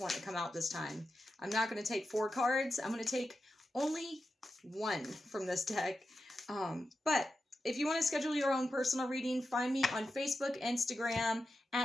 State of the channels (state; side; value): normal; both; correlation 0.90